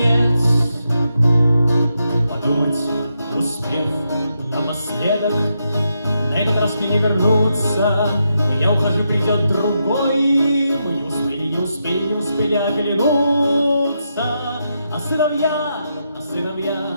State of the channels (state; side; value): inverted; both; correlation -0.83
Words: Подумать, успев напоследок, на этот раз мне не вернуться. Я ухожу, придет другой. Мы не успели оглянуться. А сыновья